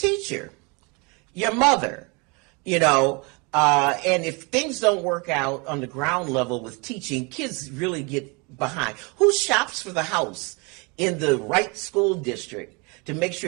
Your mother. And if things don't work out on the ground level with teaching, kids really get behind. Who shops for the house in the right school district to make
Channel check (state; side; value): quieter; left; 29.9 dB